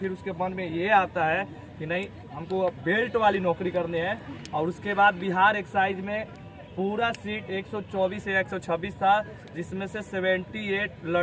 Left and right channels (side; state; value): both; identical; correlation 1.00